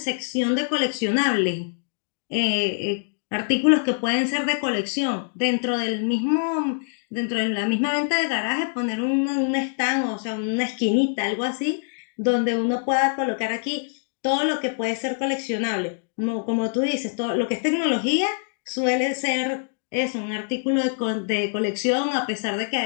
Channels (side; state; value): right; silent; digital silence